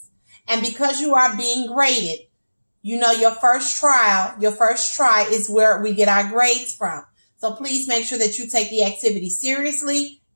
And because you are being graded, you know your first try is where we get our grades from. So please make sure that you take the activity seriously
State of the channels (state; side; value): inverted; both; correlation -1.00